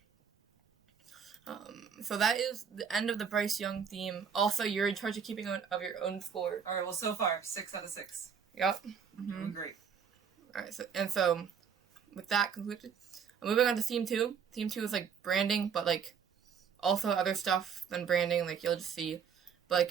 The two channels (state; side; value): quieter; left; 7.1 dB